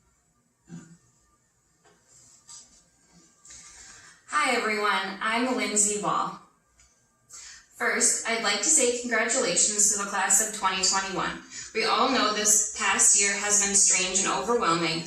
Hi everyone, I'm Lindsay Wall. First, I'd like to say congratulations to the Class of 2021. We all know this past year has been strange and overwhelming,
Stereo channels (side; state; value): both; identical; correlation 1.00